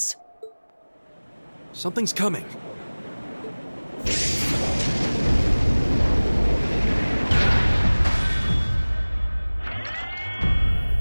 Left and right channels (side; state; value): both; inverted; correlation -1.00